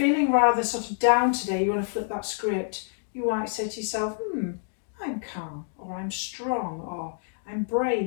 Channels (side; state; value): right; silent; digital silence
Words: rather sort of down today, you want to flip that script, you might say to yourself, I'm calm, or I'm strong, or I'm